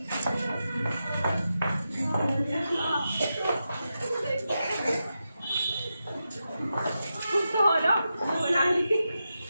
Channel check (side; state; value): both; inverted; correlation -0.89